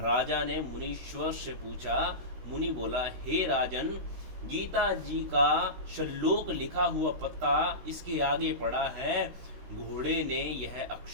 ने मुनीश्वर से पूछा। मुनि बोला, हे राजन, गीता जी का श्लोक लिखा हुआ पत्ता इसके आगे पड़ा है। घोड़े ने यह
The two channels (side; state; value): left; late; 16 ms